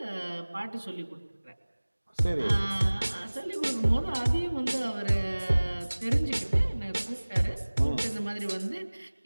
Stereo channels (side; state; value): both; inverted; correlation -1.00